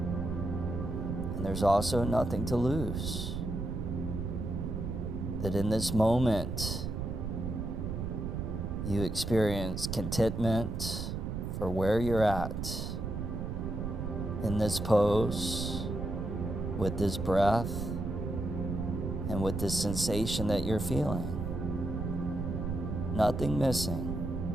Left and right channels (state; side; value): noise; right; rumble, 3 dB below the sound